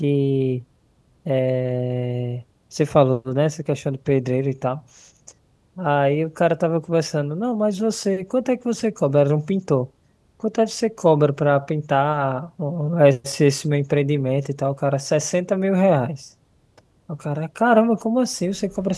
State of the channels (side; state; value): both; identical; correlation 1.00